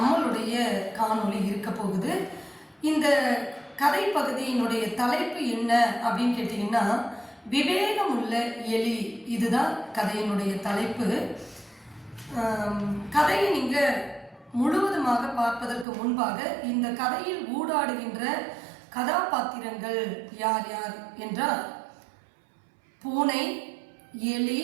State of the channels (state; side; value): drops out; left; at 15.9 s